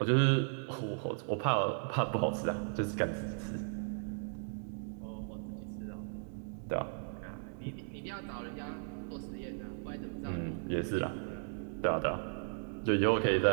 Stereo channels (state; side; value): silent; left; digital silence